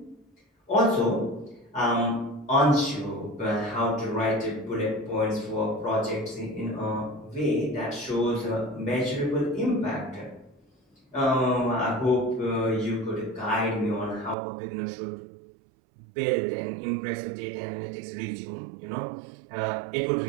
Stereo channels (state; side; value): drops out; left; at 14.4 s